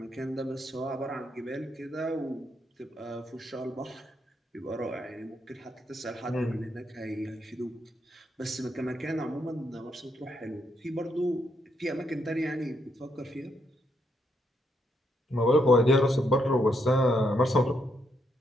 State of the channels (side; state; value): both; normal; correlation 0.77